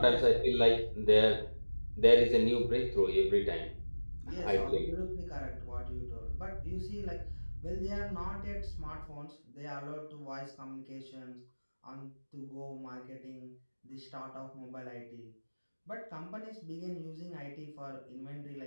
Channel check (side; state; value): both; inverted; correlation -1.00